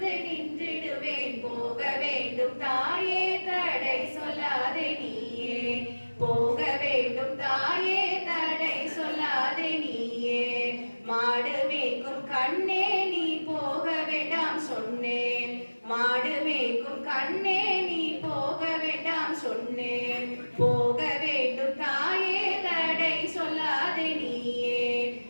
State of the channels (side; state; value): both; inverted; correlation -1.00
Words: நின்றிடுவேன். போக வேண்டும் தாயே தடை சொல்லாதே நீயே, போக வேண்டும் தாயே தடை சொல்லாதே நீயே. மாடு மேய்க்கும் கண்ணே நீ போக வேண்டாம் சொன்னேன், மாடு மேய்க்கும் கண்ணே நீ போக வேண்டாம் சொன்னேன். போக வேண்டும் தாயே தடை சொல்லாதே நீயே,